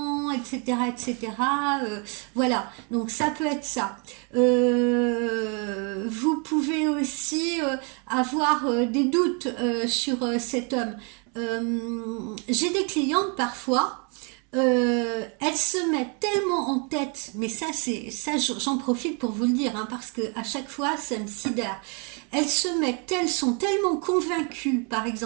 etc., etc. Voilà, donc ça peut être ça. Vous pouvez aussi avoir des doutes sur cet homme. J'ai des clientes parfois, elles se mettent tellement en tête, mais j'en profite pour vous le dire, hein, parce que à chaque fois ça me sidère. Elles sont tellement convaincues, par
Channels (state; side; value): quieter; left; 35.4 dB